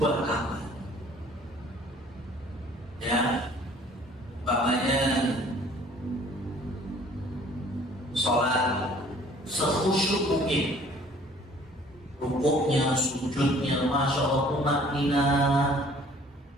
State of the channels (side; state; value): both; normal; correlation 0.54